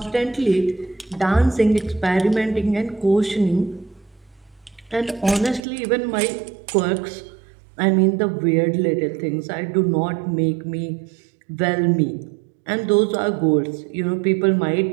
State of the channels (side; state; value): left; drops out; at 5.6 s